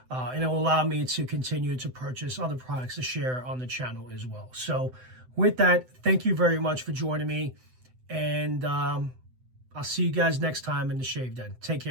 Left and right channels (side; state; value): left; late; 7.9 ms